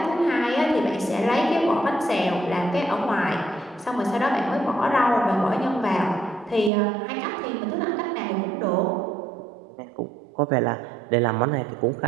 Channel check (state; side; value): drops out; left; at 6.7 s